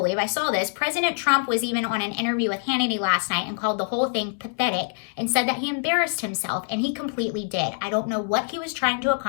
I saw this. President Trump was even on an interview with Hannity last night and called the whole thing pathetic and said that he embarrassed himself, and he completely did. I don't know what he was trying to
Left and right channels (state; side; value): silent; right; 62 dB below the other